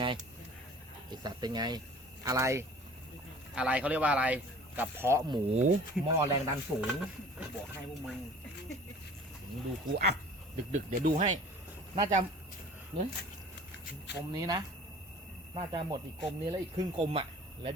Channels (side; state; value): both; normal; correlation 0.46